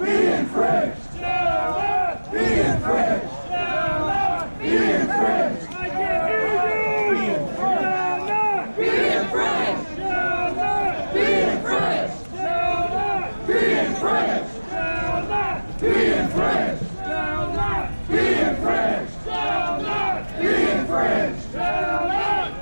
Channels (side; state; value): both; inverted; correlation -1.00